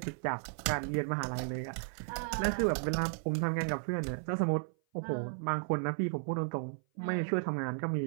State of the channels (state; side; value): silent; left; 55 dB below the other